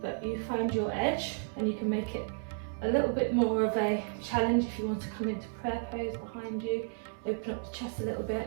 you find your edge and you can make it a little bit more of a challenge if you want to come into prayer pose behind you, open up the chest a little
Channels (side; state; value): left; silent; 56 dB below the other